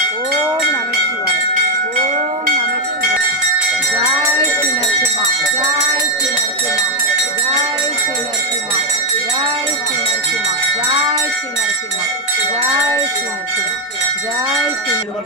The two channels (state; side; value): normal; both; correlation 0.02